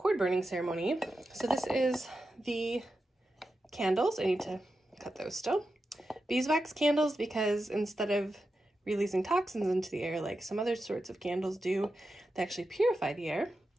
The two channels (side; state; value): both; normal; correlation 0.90